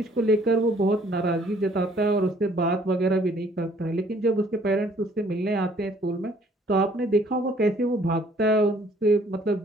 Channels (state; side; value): normal; both; correlation 0.60